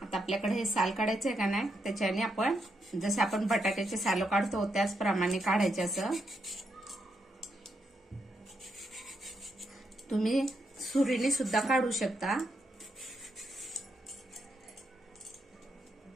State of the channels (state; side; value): normal; both; correlation 0.81